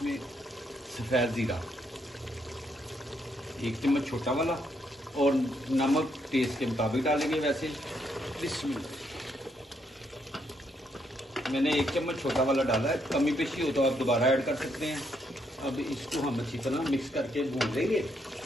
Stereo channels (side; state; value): both; normal; correlation 0.75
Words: सफ़ेद ज़ीरा 1 चम्मच छोटा वाला और नमक टेस्ट के मुताबिक डालेंगे वैसे। बिस्मिल्लाह। मैंने 1 चम्मच छोटा वाला डाला है, कमी पेशी हो तो आप दोबारा ऐड कर सकते हैं। अब इसको हम अच्छी तरह मिक्स करके भून लेंगे।